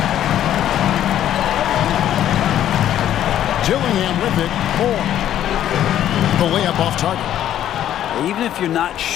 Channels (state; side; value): quieter; right; 11.4 dB